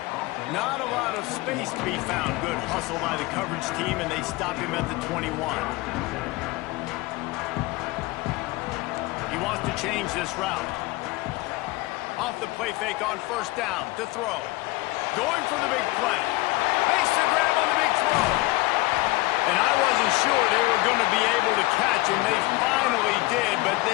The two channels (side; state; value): right; quieter; 20.9 dB